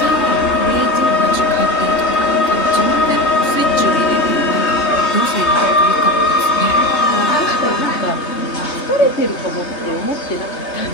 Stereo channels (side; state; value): right; late; 3.2 ms